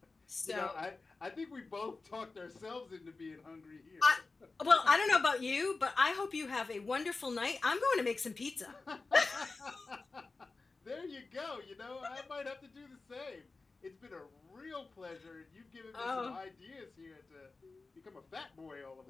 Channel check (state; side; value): quieter; right; 3.8 dB